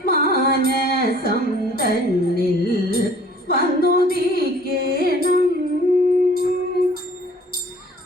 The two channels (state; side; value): normal; both; correlation 0.53